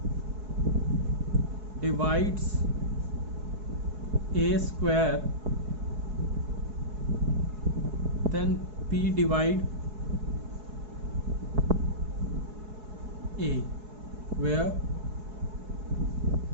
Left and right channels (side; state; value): left; late; 4.7 ms